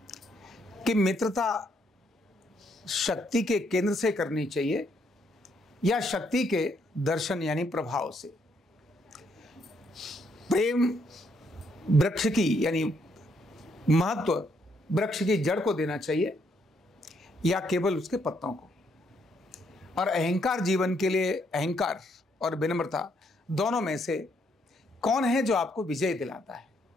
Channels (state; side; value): normal; both; correlation 0.73